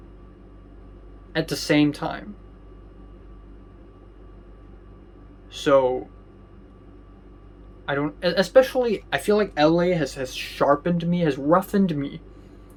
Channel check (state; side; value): identical; both; correlation 1.00